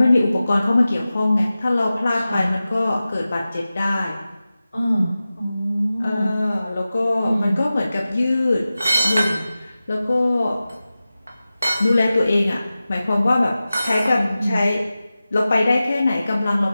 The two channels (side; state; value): both; inverted; correlation -0.95